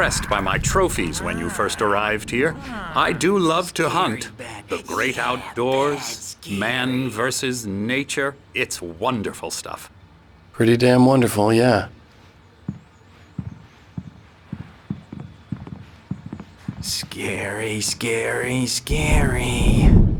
by my trophies when you first arrived here. I do love to hunt. The great outdoors, man versus nature. It's wonderful stuff. Pretty damn wonderful, yeah. Scary, scary, scary.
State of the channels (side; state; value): both; identical; correlation 1.00